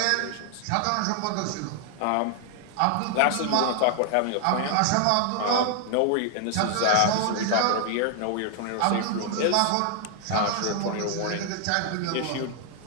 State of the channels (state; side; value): different; both; correlation 0.00